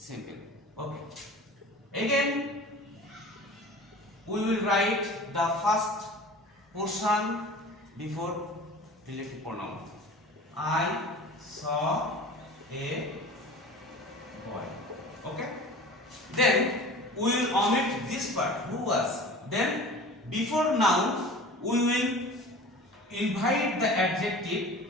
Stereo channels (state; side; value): normal; both; correlation 0.39